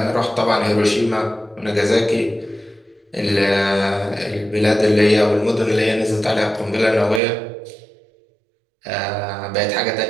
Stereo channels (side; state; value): left; drops out; at 7.2 s